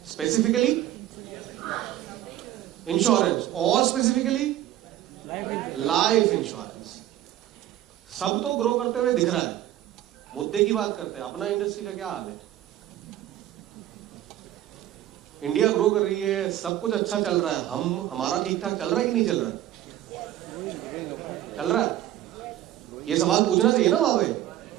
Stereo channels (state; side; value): quieter; left; 13.1 dB